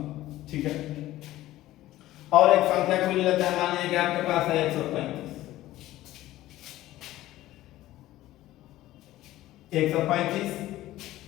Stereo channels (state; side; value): quieter; right; 15.5 dB